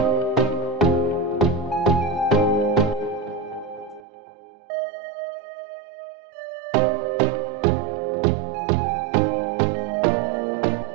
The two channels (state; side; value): drops out; left; at 4.0 s